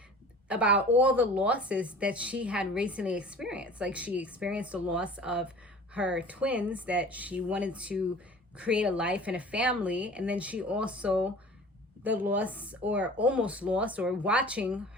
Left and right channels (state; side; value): normal; both; correlation 0.43